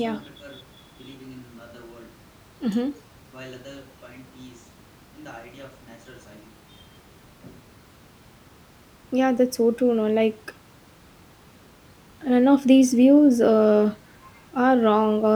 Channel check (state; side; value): identical; both; correlation 1.00